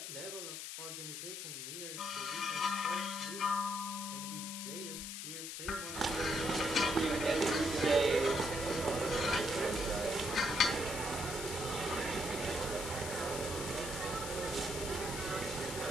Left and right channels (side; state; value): left; noise; hiss, 6 dB below the sound